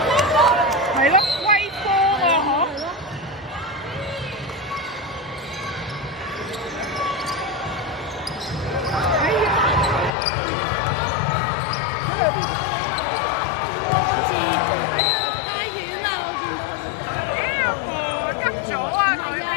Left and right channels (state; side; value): drops out; right; at 10.1 s